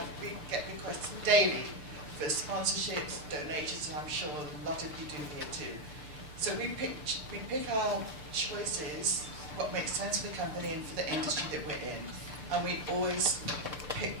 we get requests daily for sponsorships, donations, and I'm sure a lot of you do here too. So we pick our choices, what makes sense for the company and for the industry that we're in. And we always pick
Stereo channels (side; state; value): left; late; 6.7 ms